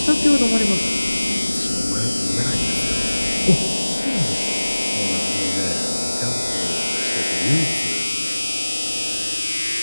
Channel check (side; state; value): both; inverted; correlation -1.00